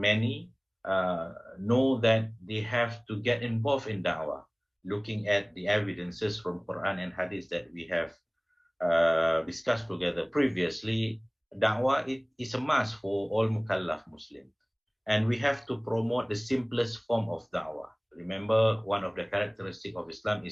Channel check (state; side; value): identical; both; correlation 1.00